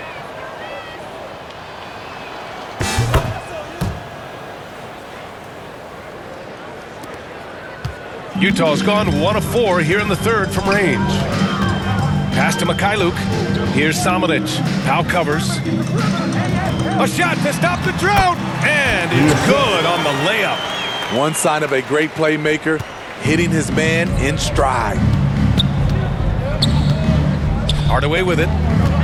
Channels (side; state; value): both; identical; correlation 1.00